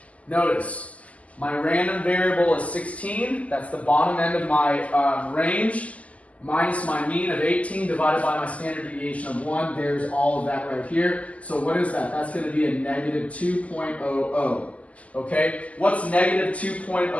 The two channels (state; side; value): late; right; 0.069 ms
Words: Notice, my random variable is 16. That's the bottom end of my range. Minus my mean of 18 divided by my standard deviation of 1. There's all of that right here. So what is that? That's going to be a negative 2.00. Okay, what's negative